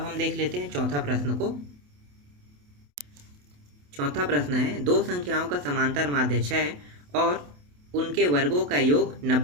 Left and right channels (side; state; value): left; late; 28 ms